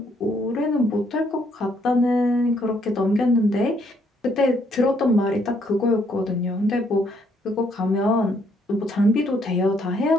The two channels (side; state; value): both; normal; correlation 0.70